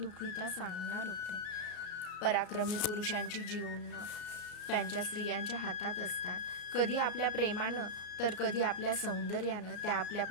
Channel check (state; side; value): late; right; 33 ms